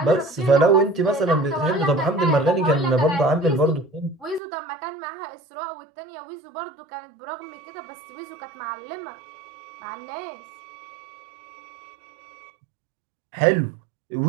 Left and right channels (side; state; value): left; drops out; at 4.4 s